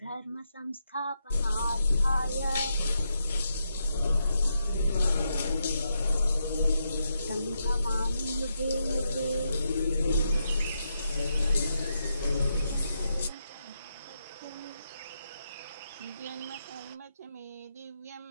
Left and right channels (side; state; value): both; inverted; correlation -0.83